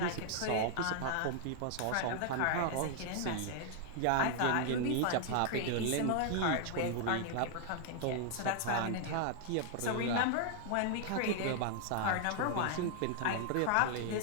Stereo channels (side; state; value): both; different; correlation 0.00